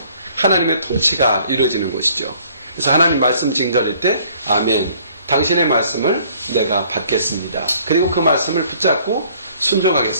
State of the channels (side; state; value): both; inverted; correlation -0.59